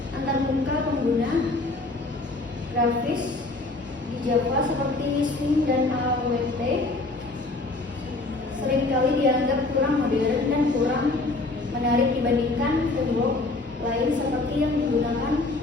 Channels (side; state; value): right; quieter; 3.2 dB